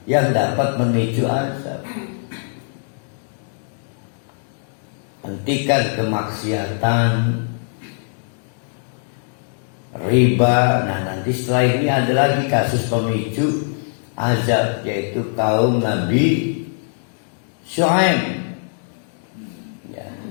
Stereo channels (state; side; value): silent; right; 65 dB below the other